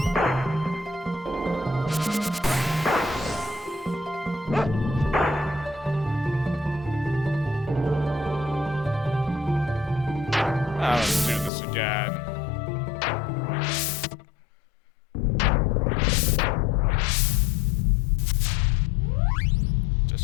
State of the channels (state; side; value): drops out; right; at 11.5 s